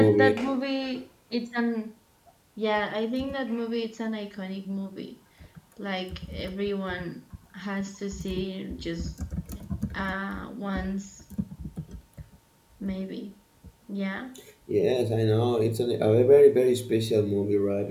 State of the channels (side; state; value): both; identical; correlation 1.00